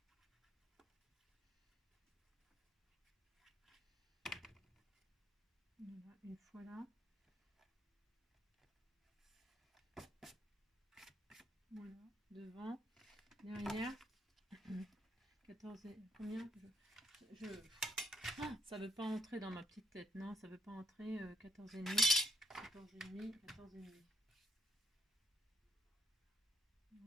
Voilà, une fois là. Voilà, devant, derrière. 14 et combien Ah, ça veut pas entrer dans ma petite tête. Non, ça veut pas entrer 14,5. 14,5, 14,5.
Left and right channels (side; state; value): both; normal; correlation 0.71